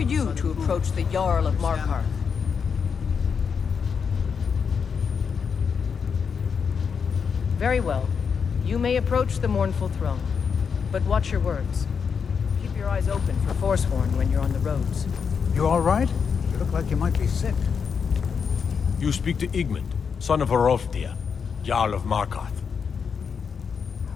to approach the Jarl of Markarth? Very well. You may approach the mournful throne. But watch your words. Keep your eyes open for Forsworn when you're on the roads. You all right? You look like you might be sick. You speak to Igmund, son of Hrolfdir, Jarl of Markarth.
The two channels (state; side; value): quieter; right; 6.3 dB